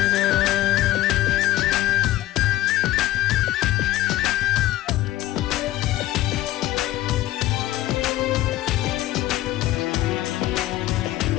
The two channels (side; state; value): right; quieter; 15.4 dB